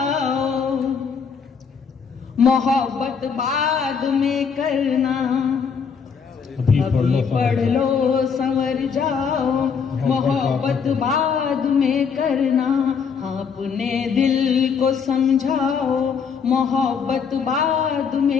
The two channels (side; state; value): right; quieter; 6.2 dB